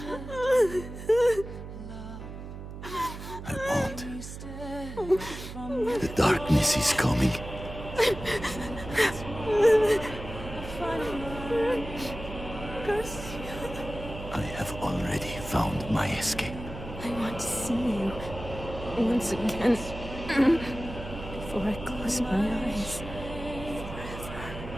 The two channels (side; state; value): right; noise; hum, 10 dB below the sound